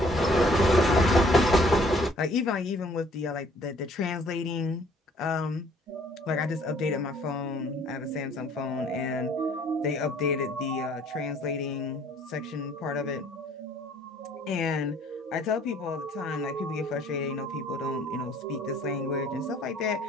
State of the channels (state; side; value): normal; both; correlation 0.58